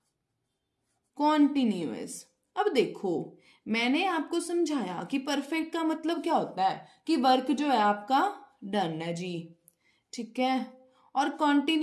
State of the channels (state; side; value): identical; both; correlation 1.00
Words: continuous. अब देखो, मैंने आपको समझाया कि परफेक्ट का मतलब क्या होता है कि वर्क जो है आपका डन है जी। ठीक है, और